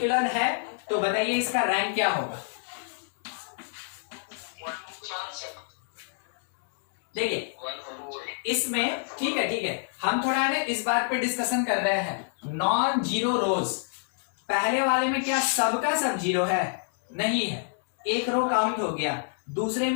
है, तो बताइए इसका रैंक क्या होगा? देखिए इसमें, ठीक है, हम थोड़ा ना इस बात पे डिस्कशन कर रहे हैं। नॉन जीरो रोज, पहले वाले में क्या सबका सब जीरो है? नहीं है, एक रो काउंट हो गया। दूसरे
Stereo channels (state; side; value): silent; right; 60 dB below the other